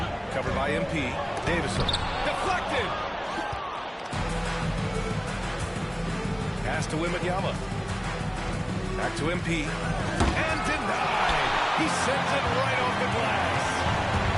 covered by MP. Davison, deflected! Pass to Wembanyama. Back to MP. And denied! He sends it right off the glass.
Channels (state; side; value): identical; both; correlation 1.00